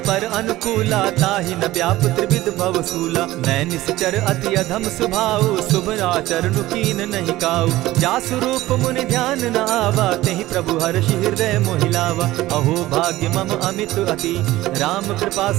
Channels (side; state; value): left; quieter; 16.9 dB